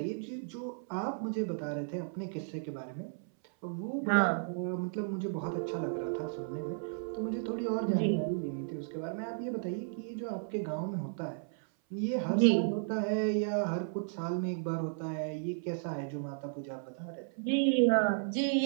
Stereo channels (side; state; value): left; silent; 55 dB below the other